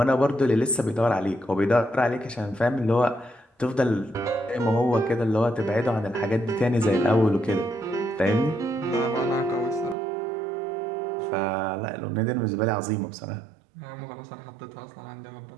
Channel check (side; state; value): left; drops out; at 10.0 s